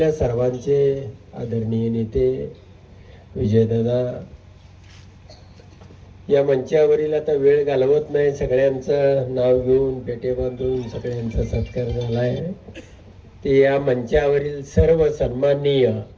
सर्वांचे आदरणीय नेते विजयदादा या मंचावरील आता वेळ घालवत नाही, सगळ्यांचं नाव घेऊन पेटे बांधून सगळ्यांचा सत्कार झाला आहे. ते या मंचावरील सर्व सन्माननीय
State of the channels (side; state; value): both; identical; correlation 1.00